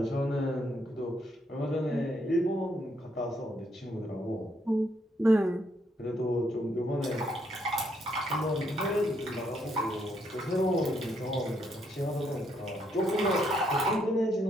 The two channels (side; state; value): both; normal; correlation 0.73